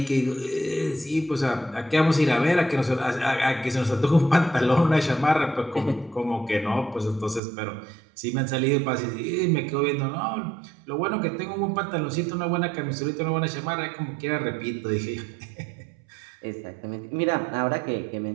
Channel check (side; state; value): left; drops out; at 7.4 s